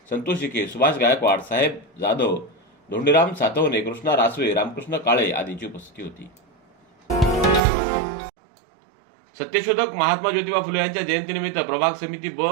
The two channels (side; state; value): left; drops out; at 7.6 s